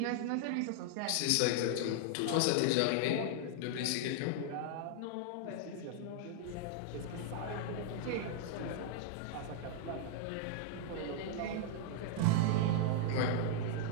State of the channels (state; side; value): different; both; correlation 0.00